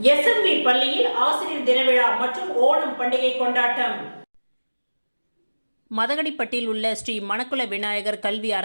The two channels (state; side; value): inverted; both; correlation -1.00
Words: SMV பள்ளியில் ஆசிரியர் தின விழா மற்றும் ஓணம் பண்டிகை கொண்டாட்டம். மதகடிப்பட்டில் உள்ள ஸ்ரீ மணக்குள விநாயகர் கல்வி